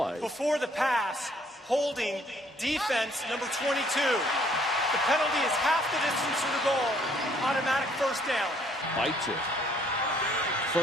Before the pass, holding defense number 22. The penalty is half the distance to the goal. Automatic first down. Bites it.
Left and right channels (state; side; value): normal; both; correlation 0.63